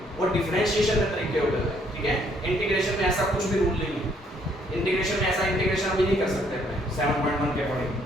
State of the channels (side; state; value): both; normal; correlation 0.67